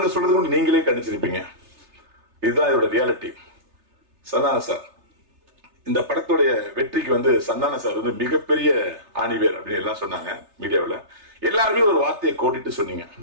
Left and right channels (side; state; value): left; late; 3.3 ms